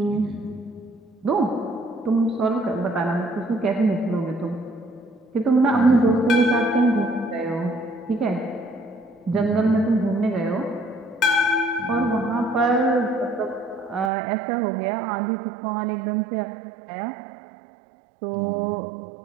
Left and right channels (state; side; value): drops out; left; at 14.1 s